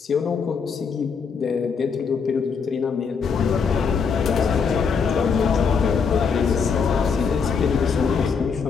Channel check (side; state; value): right; quieter; 5.8 dB